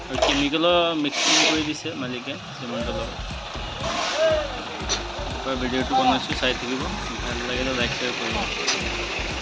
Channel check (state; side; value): identical; both; correlation 1.00